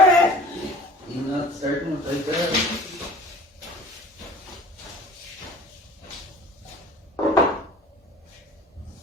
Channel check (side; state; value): both; normal; correlation 0.46